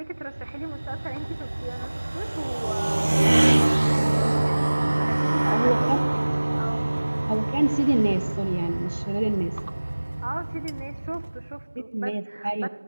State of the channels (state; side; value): inverted; both; correlation -1.00